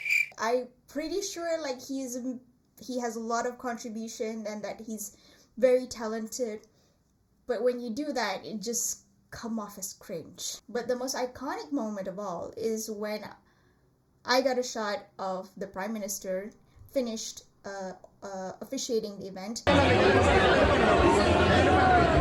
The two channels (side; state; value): both; identical; correlation 1.00